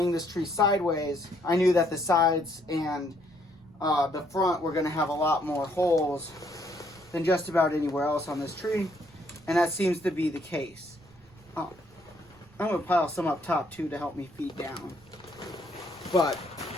this tree sideways, I knew that the sides and the front were going to have a lot more holes than just about anywhere else on this tree, and that seems to be the case. I'm going to pile some up top too to help me feed down. But,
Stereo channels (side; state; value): right; noise; rumble, 27 dB below the sound